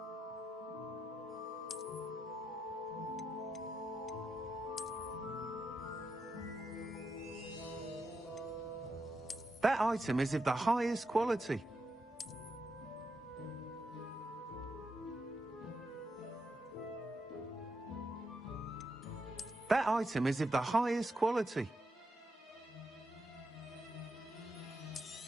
That item is of the highest quality. That item is of the highest quality.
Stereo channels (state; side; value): normal; both; correlation 0.84